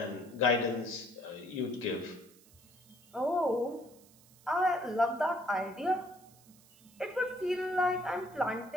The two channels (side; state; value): right; noise; hiss, 26 dB below the sound